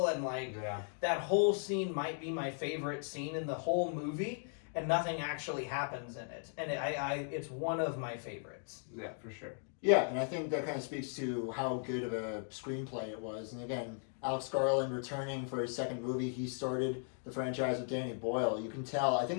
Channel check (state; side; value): silent; right; 53 dB below the other